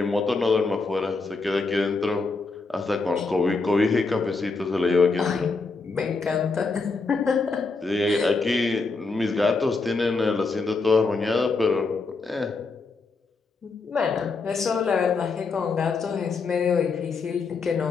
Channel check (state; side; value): quieter; right; 4.1 dB